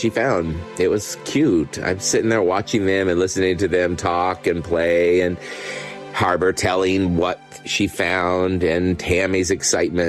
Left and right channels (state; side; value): identical; both; correlation 1.00